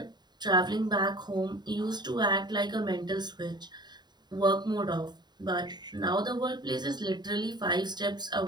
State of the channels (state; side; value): late; left; 0.21 ms